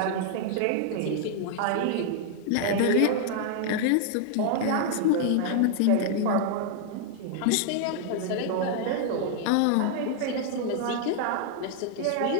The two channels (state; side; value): different; both; correlation 0.00